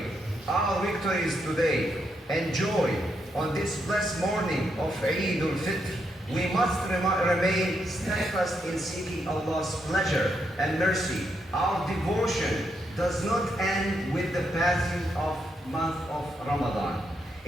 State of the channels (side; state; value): both; normal; correlation 0.79